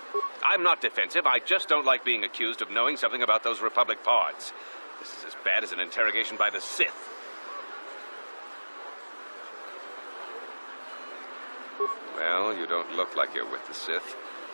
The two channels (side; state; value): both; inverted; correlation -1.00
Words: I'm not defensive. I just don't like being accused of knowing something about those Republic pods. This is as bad as an interrogation by the Sith. Well, you don't look like you're with the Sith.